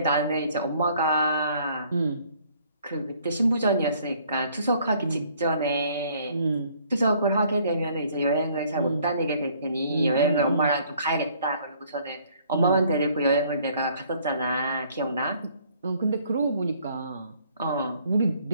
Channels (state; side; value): inverted; both; correlation -0.61